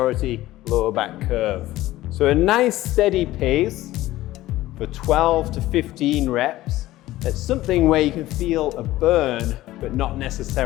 lower back curve. So a nice steady pace for 12 to 15 reps. That's something where you can feel a burn, but not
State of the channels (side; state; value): right; quieter; 16.2 dB